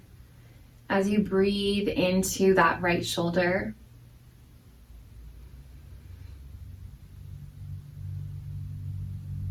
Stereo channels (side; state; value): both; identical; correlation 1.00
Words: as you breathe into that right shoulder.